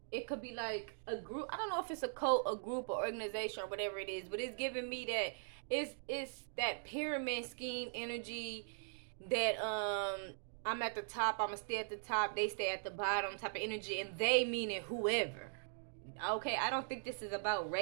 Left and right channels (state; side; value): silent; left; digital silence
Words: it could be like a group. I don't know if it's a cult, a group, or organization, or whatever it is, but it's giving me that it's that pyramid scheme energy that I'm at the top, I'm gonna stay at the top, they stay at the bottom type of energy, and they meaning whoever. Okay, I don't think this is about